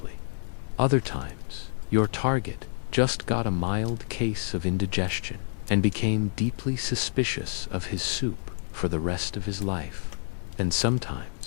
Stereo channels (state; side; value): silent; right; digital silence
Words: Other times, your target just got a mild case of indigestion and became deeply suspicious of his soup for the rest of his life. And